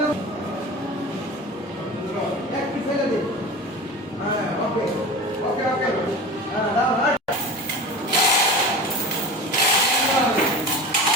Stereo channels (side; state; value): both; normal; correlation 0.32